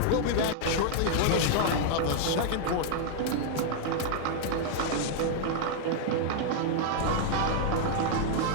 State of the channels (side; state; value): both; different; correlation 0.00